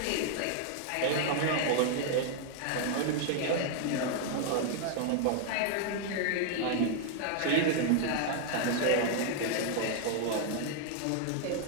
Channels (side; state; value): both; different; correlation 0.00